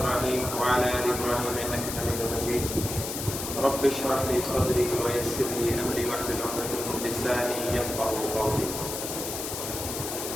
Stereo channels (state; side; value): noise; left; hiss, 6 dB below the sound